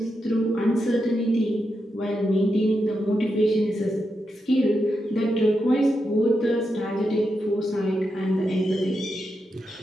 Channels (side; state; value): both; normal; correlation 0.86